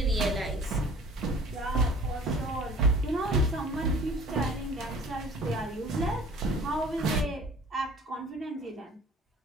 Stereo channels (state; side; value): normal; both; correlation 0.49